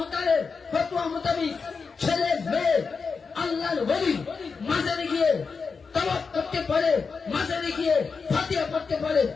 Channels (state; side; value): quieter; right; 5.1 dB